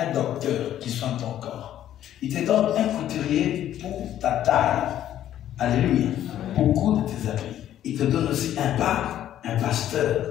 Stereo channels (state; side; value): quieter; right; 11.6 dB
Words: docteur qui soigne ton corps. Il te donne un couturier pour ta taille. Alléluia. Pour coudre tes habits. Il te donne aussi un pasteur